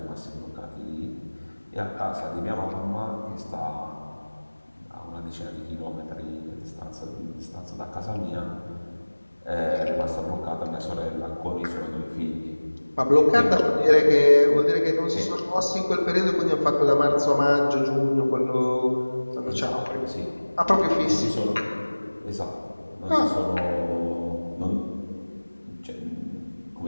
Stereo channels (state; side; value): inverted; both; correlation -1.00